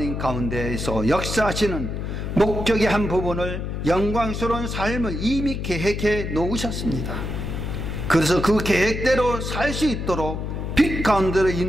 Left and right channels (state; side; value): noise; left; hum, 4 dB below the sound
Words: 가운데에서 역사하시는 목적의 한 부분을 영광스러운 삶을 이미 계획해 놓으셨습니다. 그래서 그 계획대로 살 수 있도록 빛 가운데로